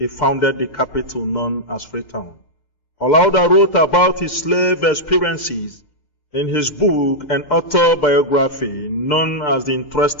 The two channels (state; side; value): late; right; 6.7 ms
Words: founded the capital known as Freetown. Olauda wrote about his slave experiences in his book and autobiography known as The